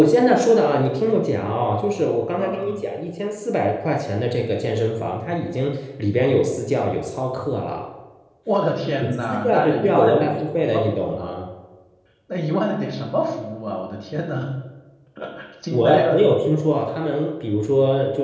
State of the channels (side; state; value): both; identical; correlation 1.00